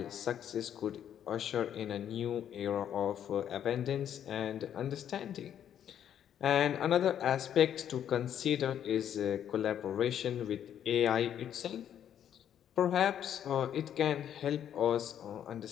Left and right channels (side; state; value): right; quieter; 9.8 dB